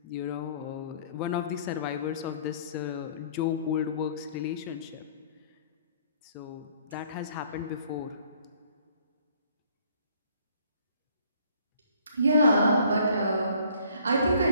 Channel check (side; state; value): both; inverted; correlation -0.59